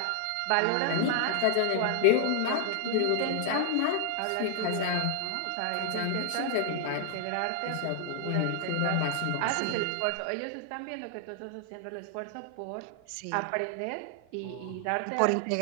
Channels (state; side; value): different; both; correlation 0.00